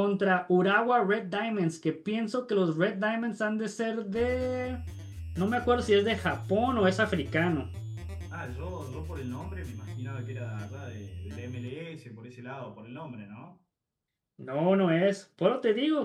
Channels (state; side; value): identical; both; correlation 1.00